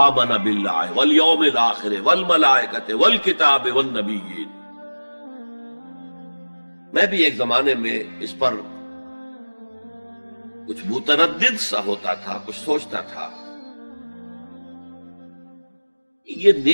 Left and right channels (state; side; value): inverted; both; correlation -1.00